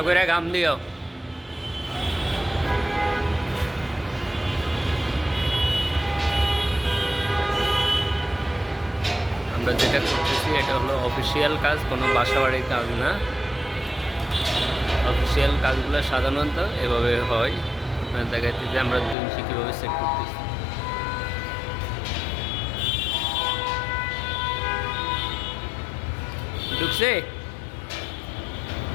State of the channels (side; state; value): right; drops out; at 19.2 s